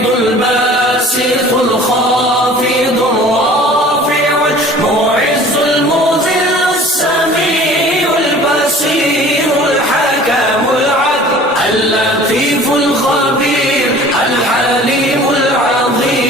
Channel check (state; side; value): normal; both; correlation 0.47